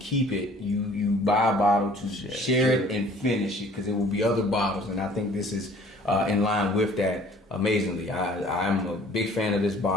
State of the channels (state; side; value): normal; both; correlation 0.52